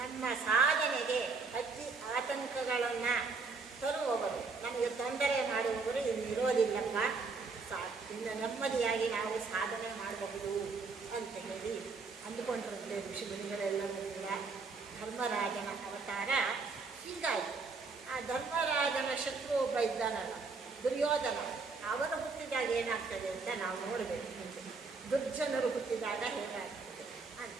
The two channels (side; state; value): left; quieter; 4.4 dB